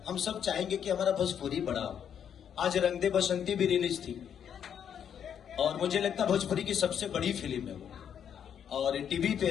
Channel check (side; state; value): right; quieter; 8.5 dB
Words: हम सब चाहेंगे कि हमारा भोजपुरी बड़ा हो। आज रंग दे बसंती भी रिलीज थी और मुझे लगता है भोजपुरी की सबसे बड़ी फिल्म है वो, और टीवी पे